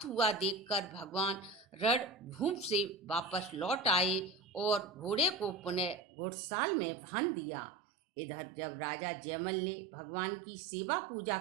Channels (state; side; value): drops out; left; at 6.0 s